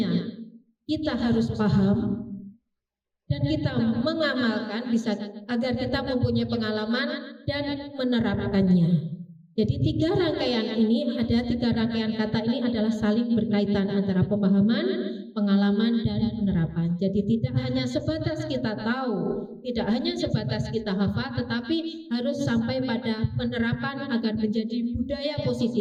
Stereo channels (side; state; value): both; identical; correlation 1.00